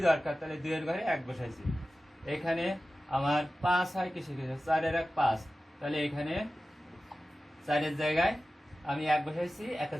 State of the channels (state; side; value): normal; both; correlation 0.95